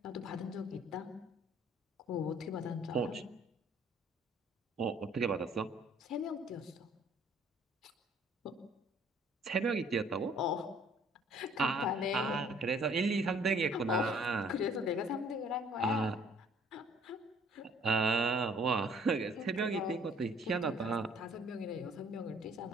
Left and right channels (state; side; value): normal; both; correlation 0.57